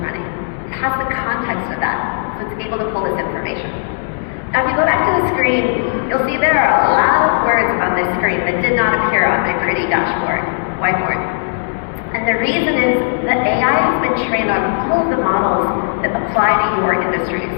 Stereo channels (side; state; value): right; silent; 64 dB below the other